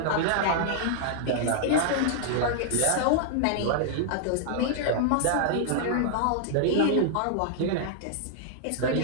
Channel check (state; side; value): different; both; correlation -0.01